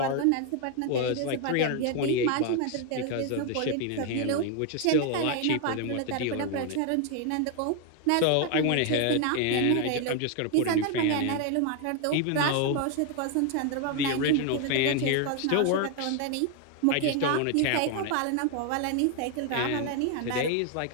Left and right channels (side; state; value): both; different; correlation 0.01